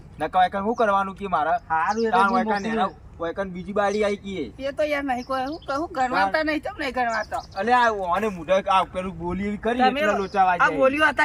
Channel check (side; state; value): both; identical; correlation 1.00